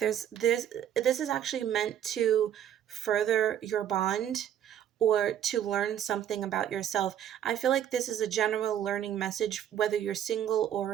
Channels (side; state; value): left; quieter; 10.3 dB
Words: this is actually meant to further your bond or to learn something about yourself. I feel like this is a general learning message, whether you're single or